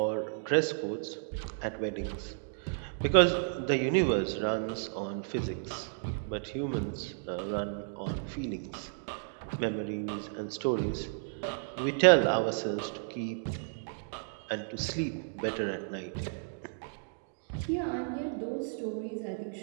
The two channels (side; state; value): left; silent; digital silence